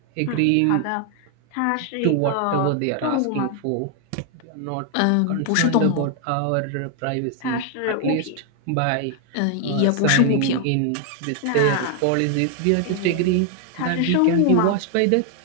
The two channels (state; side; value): different; both; correlation 0.00